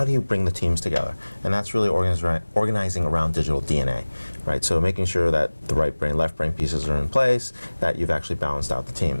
do you bring the teams together. And that's really organizing around digital DNA. Right? So making sure that the right brain, left brain pieces are in place, that you've actually balanced out the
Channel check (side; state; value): both; inverted; correlation -1.00